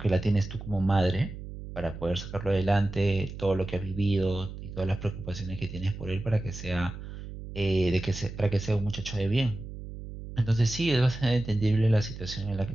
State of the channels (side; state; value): right; noise; hum, 11 dB below the sound